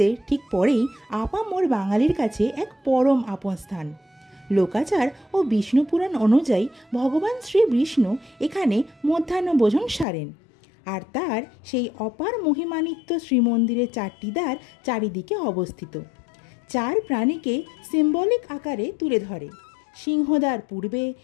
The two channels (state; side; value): drops out; right; at 10.1 s